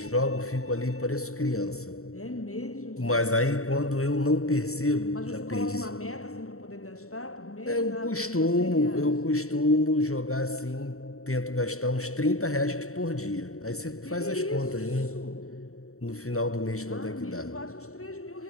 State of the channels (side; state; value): right; late; 0.64 ms